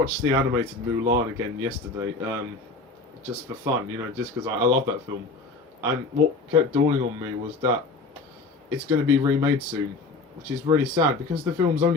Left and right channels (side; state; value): right; quieter; 3.7 dB